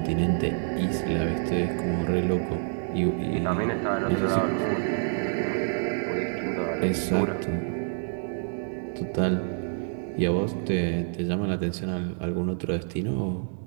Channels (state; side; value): silent; left; digital silence